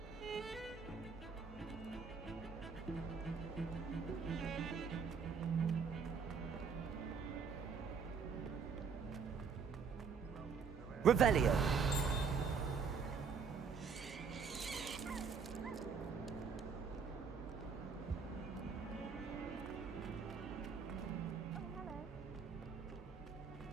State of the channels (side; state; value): left; quieter; 5.8 dB